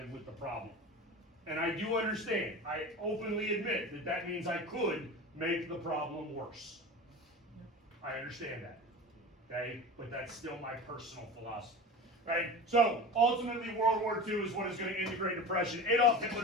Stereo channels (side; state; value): both; normal; correlation 0.31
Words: with the problem. And I do understand. I openly admit that that means I could make the problem worse. I understand that. Okay? But that's still my personal philosophy. Right? So, ultimately, World War II is what is going to end the Great Depression. Adolf